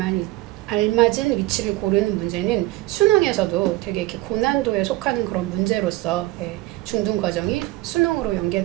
알맞은 위치를 고르는 문제는 수능에서도 되게 이렇게 고난도에 속하는 그런 문제로서 중등 과정이 수능으로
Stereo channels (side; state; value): left; quieter; 18.6 dB